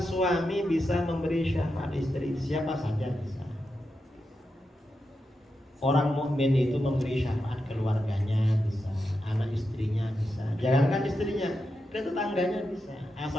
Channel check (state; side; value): normal; both; correlation 0.88